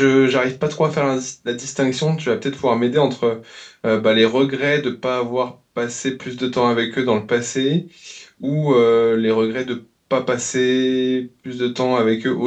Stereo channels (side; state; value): both; identical; correlation 1.00